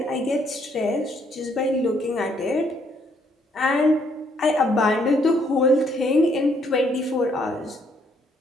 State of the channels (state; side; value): normal; both; correlation 0.69